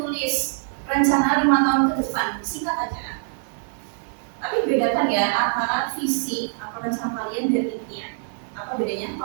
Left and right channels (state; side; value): silent; left; digital silence